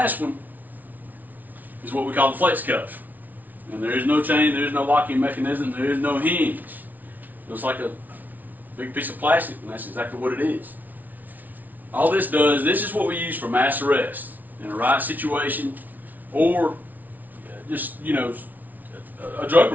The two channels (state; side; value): late; left; 0.079 ms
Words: one is what we call the flex cuff. And there is no chain, there is no locking mechanism, there is no hinge. It's like a big piece of plastic, and that's exactly what it is. All this does, this is what we use for mass arrest in a riot situation, or just, a drug